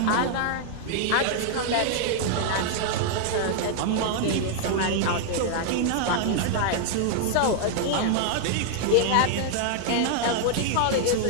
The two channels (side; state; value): both; different; correlation 0.00